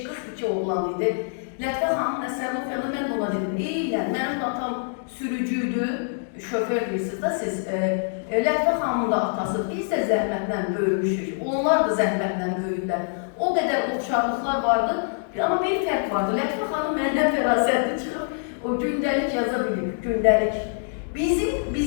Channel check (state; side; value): silent; right; digital silence